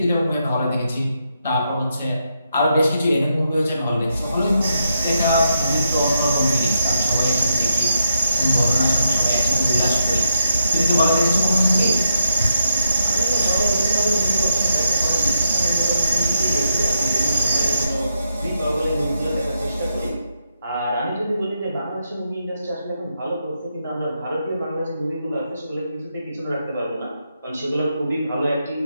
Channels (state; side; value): inverted; both; correlation -0.80